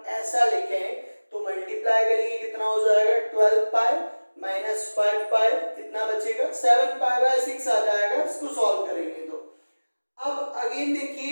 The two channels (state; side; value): inverted; both; correlation -1.00